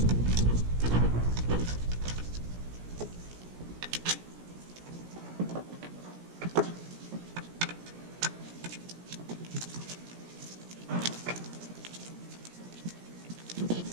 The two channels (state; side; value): late; left; 17 ms